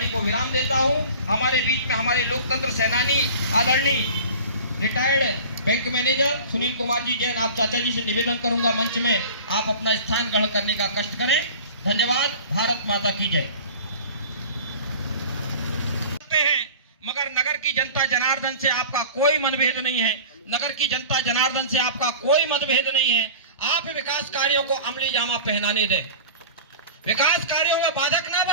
को विराम देता हूं। हमारे बीच में हमारे लोकतंत्र सेनानी आदरणीय retired bank manager Sunil Kumar ji Jain, आप चाचा जी से निवेदन करूंगा मंच में आप अपना स्थान ग्रहण करने का कष्ट करें। धन्यवाद। भारत माता की जय। मगर नगर की जनता जनार्दन से आपका कोई मतभेद नहीं है। नगर की जनता जनार्दन से आपका कोई मतभेद नहीं है। आप विकास कार्यों को अमली जामा पहनाने दें, विकास कार्यों में बाधक ना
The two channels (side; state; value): both; inverted; correlation -0.39